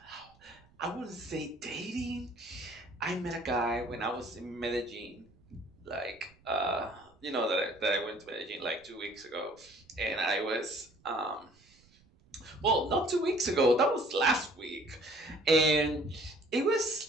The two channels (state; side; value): noise; right; rumble, 30 dB below the sound